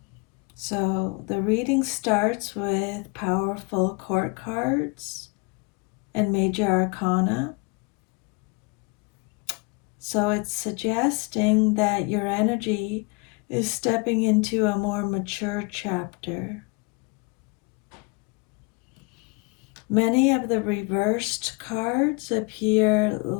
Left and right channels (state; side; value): quieter; right; 29.8 dB